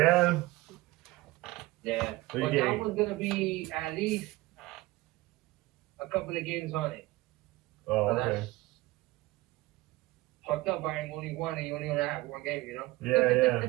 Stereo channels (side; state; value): left; quieter; 19.6 dB